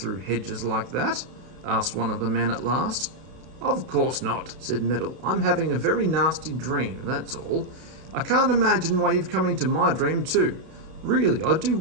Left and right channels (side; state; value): left; late; 32 ms